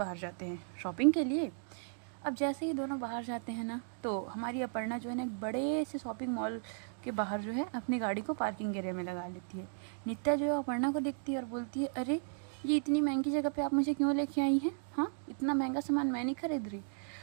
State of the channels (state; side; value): silent; left; digital silence